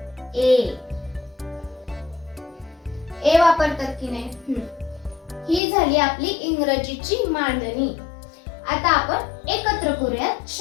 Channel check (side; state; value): right; drops out; at 5.6 s